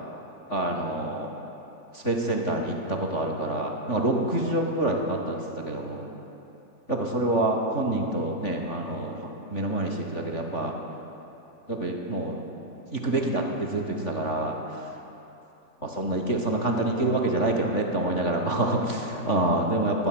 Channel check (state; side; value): late; right; 3.5 ms